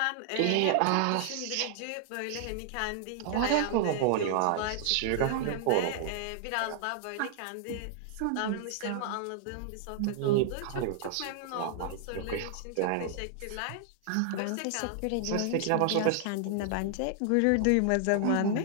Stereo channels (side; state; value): both; different; correlation -0.01